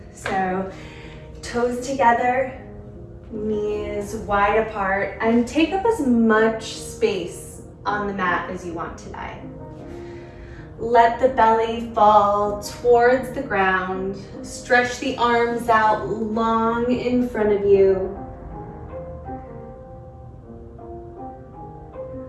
So toes together, knees wide apart, and take up as much space on the mat as you want today. Let the belly fall towards the ground. Stretch the arms out long in front of you.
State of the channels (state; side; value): identical; both; correlation 1.00